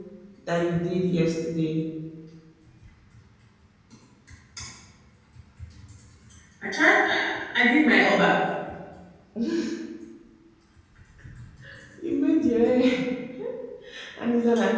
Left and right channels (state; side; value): identical; both; correlation 1.00